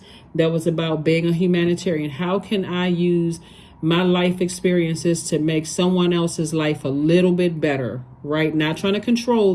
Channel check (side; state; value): both; identical; correlation 1.00